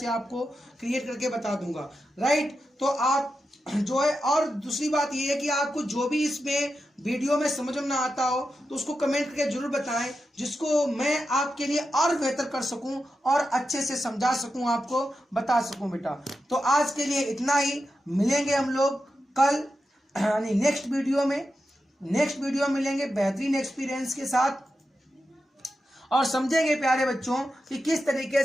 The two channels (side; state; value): both; normal; correlation 0.89